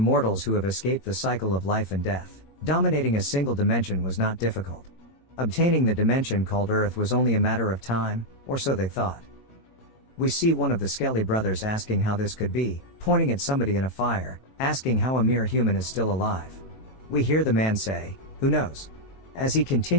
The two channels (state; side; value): late; right; 21 ms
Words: who have escaped the cycle of life and death. Dominating a single dimension was not difficult. Obtaining the dimension called Earth was only a matter of time, or so they thought. We see one of the Skelly brothers asking how this could be, pointing at somebody in a fire, asking how a mere human is still alive. We hear the man say, "Who knows?" as he